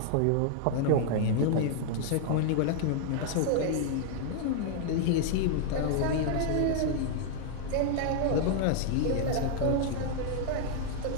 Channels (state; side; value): different; both; correlation 0.00